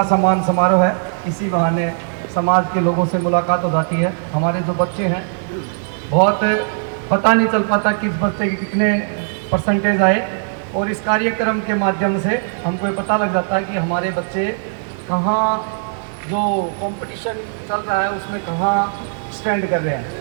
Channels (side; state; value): left; silent; 67 dB below the other